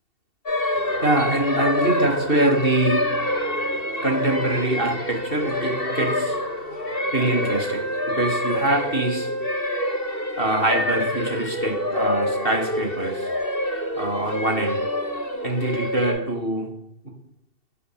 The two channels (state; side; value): late; right; 2.7 ms